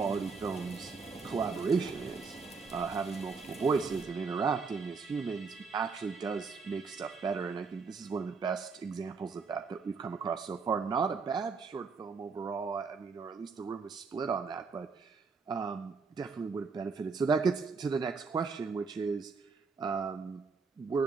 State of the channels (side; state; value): left; quieter; 4.9 dB